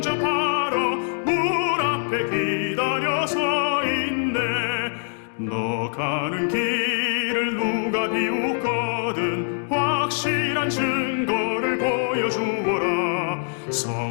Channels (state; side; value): silent; right; digital silence